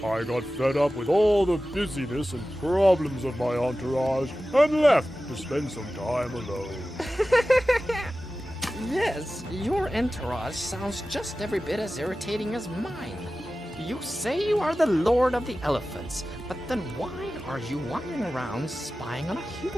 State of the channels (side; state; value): both; normal; correlation 0.95